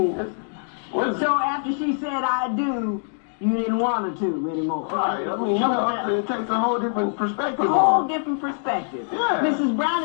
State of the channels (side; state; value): right; silent; digital silence